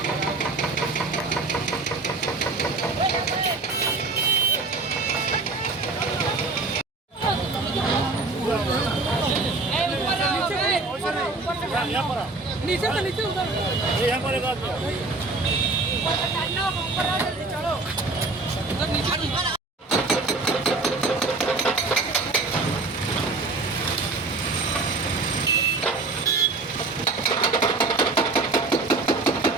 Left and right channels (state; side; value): quieter; left; 3.5 dB